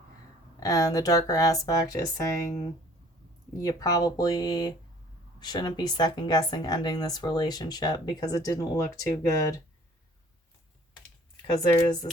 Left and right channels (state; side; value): normal; both; correlation 0.54